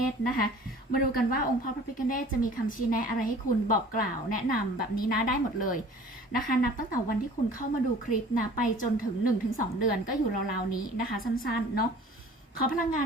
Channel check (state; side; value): normal; both; correlation 0.47